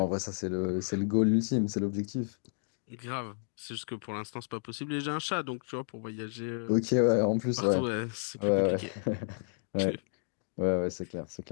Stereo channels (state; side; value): silent; right; digital silence